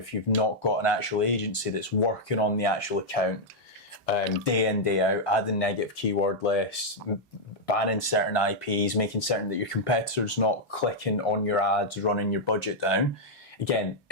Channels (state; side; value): normal; both; correlation -0.04